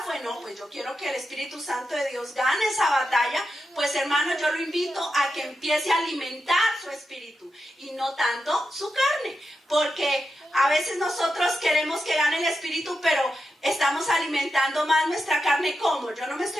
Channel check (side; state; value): both; normal; correlation 0.88